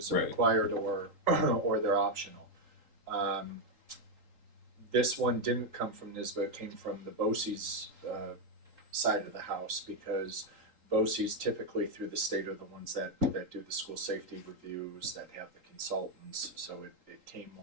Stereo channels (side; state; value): left; late; 3.8 ms